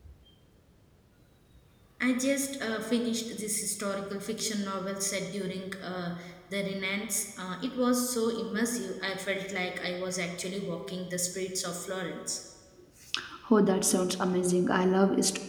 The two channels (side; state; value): both; identical; correlation 1.00